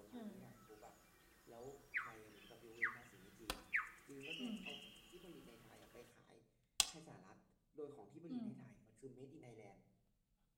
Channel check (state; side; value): identical; both; correlation 1.00